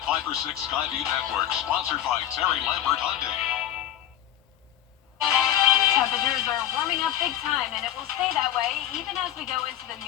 5 for 6 Skyview Network, sponsored by Terry Lambert Hyundai. Temperatures are warming up big time, and it will stay that way even as we go into the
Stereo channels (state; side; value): quieter; right; 11.7 dB